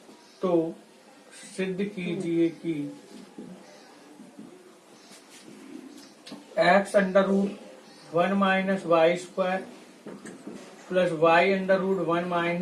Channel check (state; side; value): identical; both; correlation 1.00